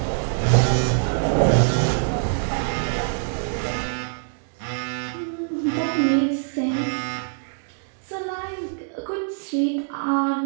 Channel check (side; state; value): left; silent; digital silence